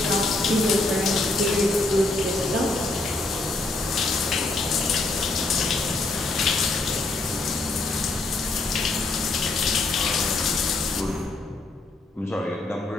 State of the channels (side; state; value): right; quieter; 3.1 dB